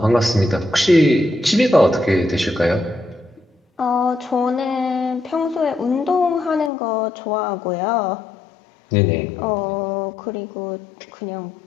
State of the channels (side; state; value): right; drops out; at 6.7 s